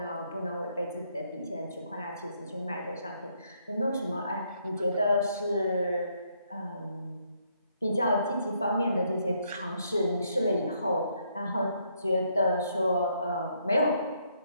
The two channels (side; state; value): both; inverted; correlation -0.72